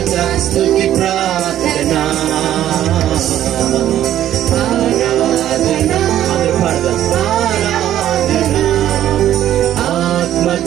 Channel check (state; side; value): quieter; left; 11.9 dB